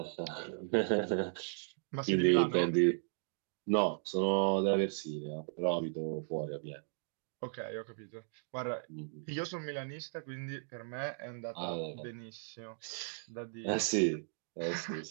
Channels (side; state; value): left; silent; digital silence